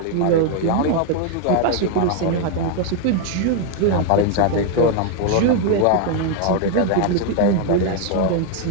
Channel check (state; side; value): different; both; correlation 0.00